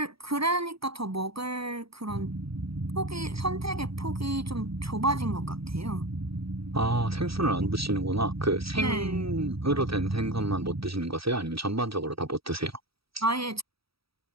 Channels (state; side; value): late; left; 0.76 ms